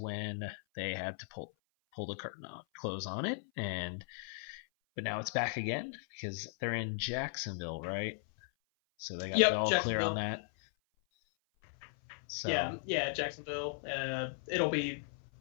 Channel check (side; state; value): right; silent; 53 dB below the other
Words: they had to pull the curtain on, close on it, but now it's back again because they're in Jacksonville, right? So they got the all clear on that. So yeah, Jacksonville. It'll be